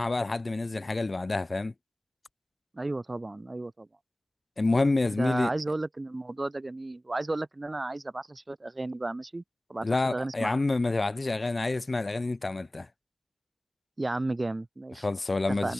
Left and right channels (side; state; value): both; normal; correlation 0.97